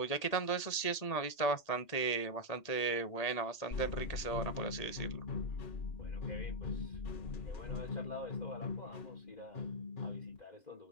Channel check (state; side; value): late; right; 1.8 ms